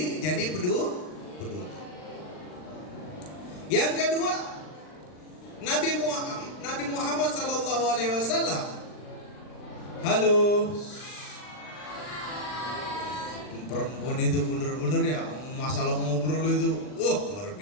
jadi peduli. Yang kedua, Nabi Muhammad SAW. Halo. Perempuan itu bener-bener ya, masalah ngobrol itu, luar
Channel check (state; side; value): late; right; 39 ms